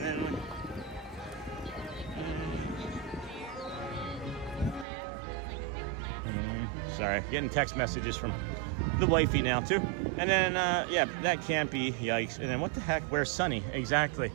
sorry, getting text messages from the wifey now too. And then yeah, that can't be, yikes. And then what the heck, where's Sunny? Exactly.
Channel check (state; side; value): drops out; left; at 4.9 s